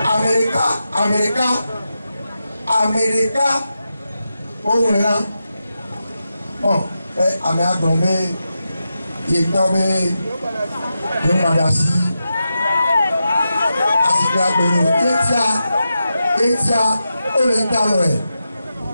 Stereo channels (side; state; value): both; inverted; correlation -0.89